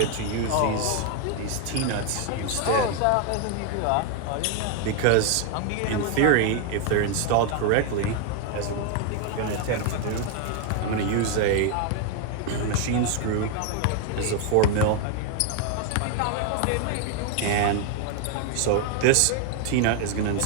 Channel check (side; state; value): both; different; correlation 0.01